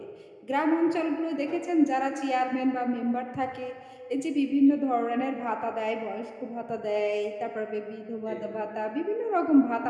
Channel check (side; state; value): both; identical; correlation 1.00